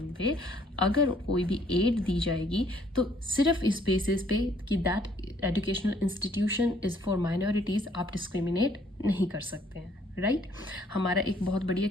पे अगर कोई भी एड दी जाएगी तो सिर्फ इस बेसिस पे कि that educational institution is for minorities आप डिस्क्रिमिनेट नहीं कर सकते हैं. राइट, हमारा एक बहुत बढ़िया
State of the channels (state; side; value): normal; both; correlation 0.63